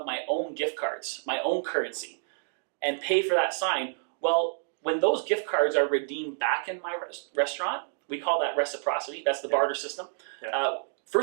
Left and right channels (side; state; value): left; silent; digital silence